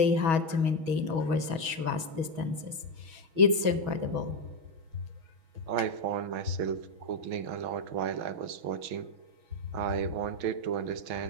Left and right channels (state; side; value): late; left; 6.2 ms